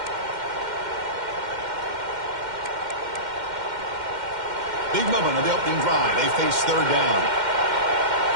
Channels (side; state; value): left; late; 2.1 ms